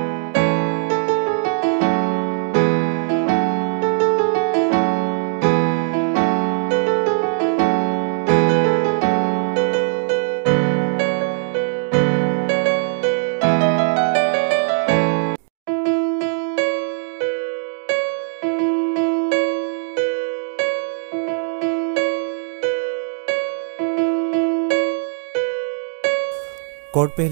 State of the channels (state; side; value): silent; left; 57 dB below the other